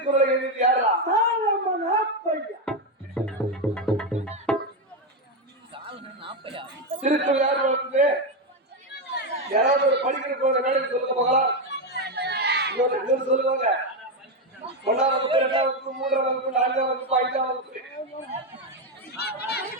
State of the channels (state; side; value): normal; both; correlation 0.08